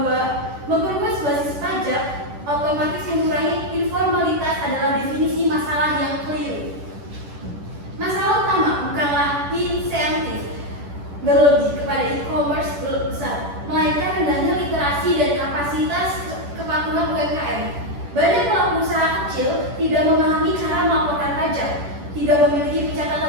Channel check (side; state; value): left; late; 10 ms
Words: memperluas basis pajak otomatis mengurangi informalitas adalah definisi masalah yang keliru. Masalah utama bukanlah insentif berlebih kepada e-commerce besar, melainkan rendahnya literasi dan kapasitas kepatuhan UMKM. Banyak pelaku usaha kecil tidak memahami cara melaporkan pajak, tidak memiliki